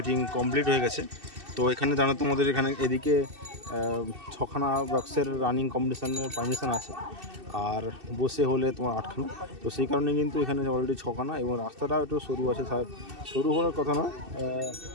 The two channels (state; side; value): late; left; 2.6 ms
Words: কমপ্লিট হয়ে গেছে। তো এখানে জানো তোমাদের এখানে এদিকে 6খানা বক্সের রানিং কম্পিটিশানের পারমিশন আছে, আর বসে হলে তোমার 8খানা। তো সেই কারণে কিন্তু এখানে অলরেডি 6খানা, এবং রাস্তাটাও একটু সরু আছে। সরু হওয়ার কথা না,